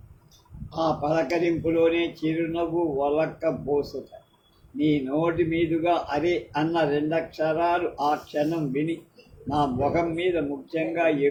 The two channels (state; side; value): identical; both; correlation 1.00